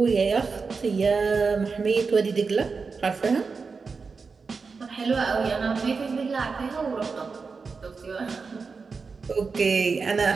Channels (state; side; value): quieter; left; 4.8 dB